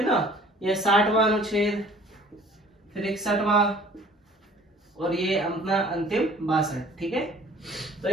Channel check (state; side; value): normal; both; correlation 0.52